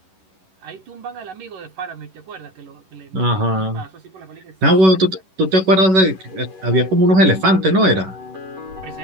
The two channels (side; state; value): left; late; 11 ms